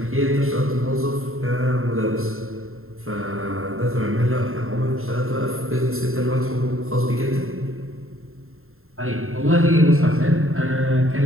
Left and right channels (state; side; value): late; left; 0.61 ms